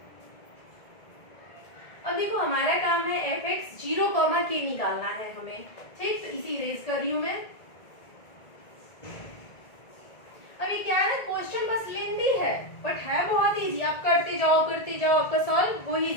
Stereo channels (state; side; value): late; right; 1.7 ms